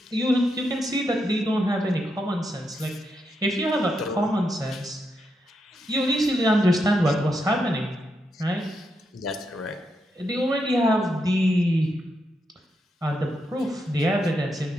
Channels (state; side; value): normal; both; correlation 0.83